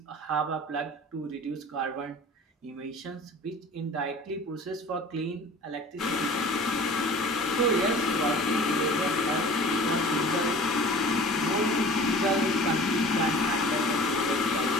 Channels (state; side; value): normal; both; correlation 0.43